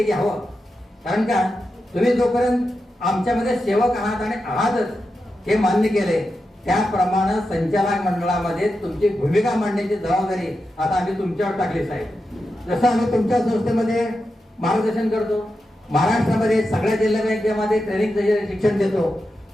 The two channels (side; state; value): both; normal; correlation 0.89